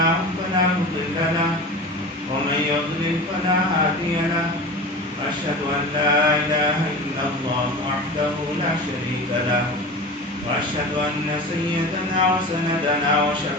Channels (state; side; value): normal; both; correlation 0.32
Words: فلا مضل له ومن يضلل فلا هادي له أشهد أن لا إله إلا الله وحده لا شريك له وأشهد أن سيدنا وسندنا